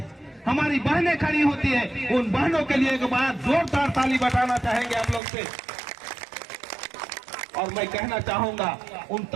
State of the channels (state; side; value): drops out; left; at 5.2 s